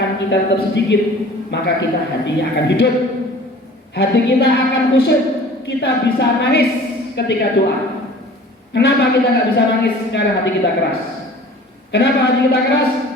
kita tetap sedikit, maka kita hatinya akan hidup, hati kita akan khusyuk, kita bisa nangis ketika doa. Kenapa kita nggak bisa nangis sekarang hati kita keras? Kenapa hati kita keras?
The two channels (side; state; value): both; normal; correlation 0.46